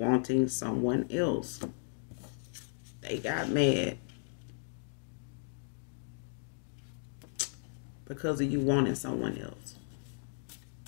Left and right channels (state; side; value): silent; right; digital silence